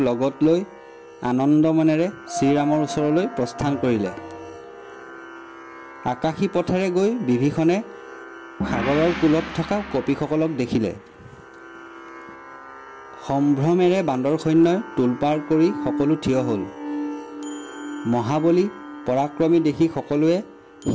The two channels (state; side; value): identical; both; correlation 1.00